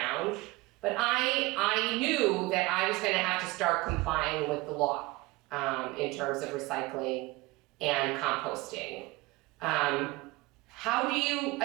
But I knew that I was gonna have to start complying with the law, in terms of recycling and composting. How do you,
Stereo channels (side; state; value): left; quieter; 22.2 dB